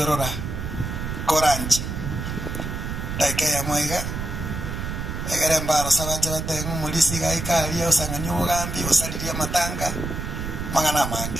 Orora Koranji taike ya mwega egere mbaro sabaje batenga mulisi gaikari osanganya ubugambi osaliria matanga mangana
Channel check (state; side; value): noise; right; rumble, 5 dB below the sound